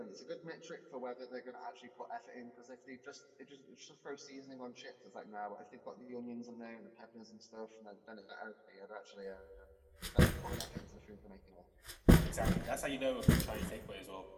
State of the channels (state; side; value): identical; both; correlation 1.00